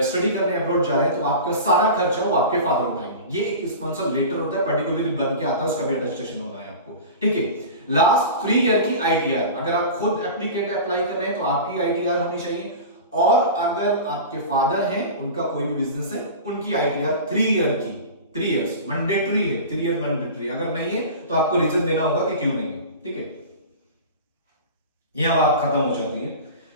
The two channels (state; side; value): inverted; both; correlation -0.33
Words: स्टडी करने अब्रॉड जा रहे हैं तो आपका सारा खर्चा वो आपके फादर उठाएंगे। ये एक स्पॉन्सर लेटर होता है, पर्टिकुलरली बन के आता है, उसका भी अटेस्टेशन होना है आपको, ठीक है। लास्ट 3 ईयर की आईटीआर, अगर आप खुद एप्लीकेट अप्लाई कर रहे हैं तो आपकी आईटीआर होनी चाहिए, और अगर आपके फादर हैं, उनका कोई भी बिजनेस है, उनकी आईटीआर 3 ईयर की, 3 इयर्स मैंडेटरी है, 3 ईयर मैंडेटरी। अगर नहीं है तो आपको रीजन देना होगा कि क्यों नहीं है, ठीक है। यहां बात खत्म हो जाती है।